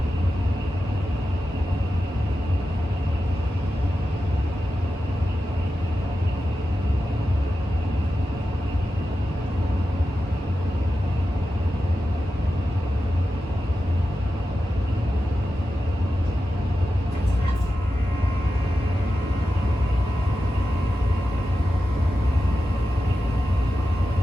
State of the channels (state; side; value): normal; both; correlation 0.91